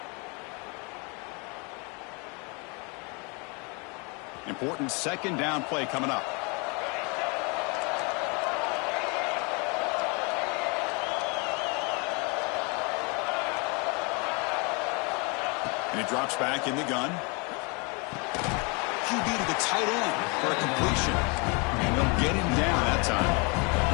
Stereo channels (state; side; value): quieter; right; 31.5 dB